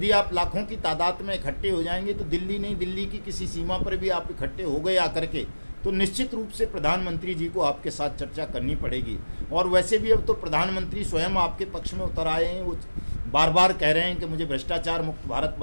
आप लाखों की तादाद में इकट्ठे हो जाएंगे तो दिल्ली नहीं, दिल्ली की किसी सीमा पर भी आप इकट्ठे हो गए आकर के, तो निश्चित रूप से प्रधानमंत्री जी को आपके साथ चर्चा करनी पड़ेगी। और वैसे भी अब तो प्रधानमंत्री स्वयं आपके पक्ष में उतर आए हैं। वो बार बार कह रहे हैं कि मुझे भ्रष्टाचार मुक्त भारत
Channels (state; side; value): inverted; both; correlation -1.00